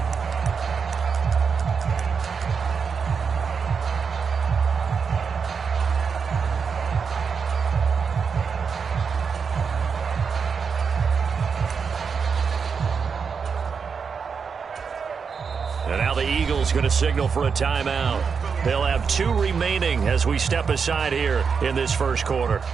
And now the Eagles going to signal for a timeout. They'll have 2 remaining as we step aside here in this first quarter.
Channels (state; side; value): quieter; left; 5.9 dB